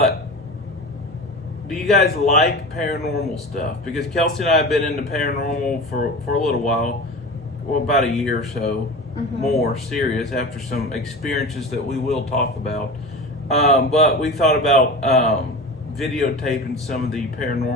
do you guys like paranormal stuff? Because Kelsey and I have been into paranormal for a little while, about a year or so, more serious after some experiences that we will talk about. But we thought about videotaping some of the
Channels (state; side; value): normal; both; correlation 0.31